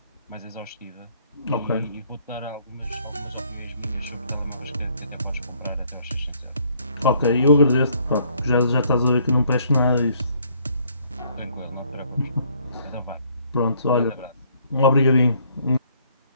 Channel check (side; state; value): both; inverted; correlation -0.64